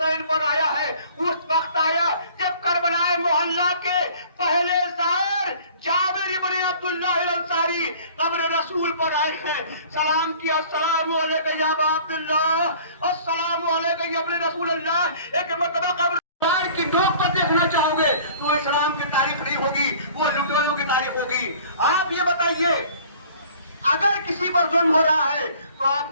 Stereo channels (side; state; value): both; inverted; correlation -0.50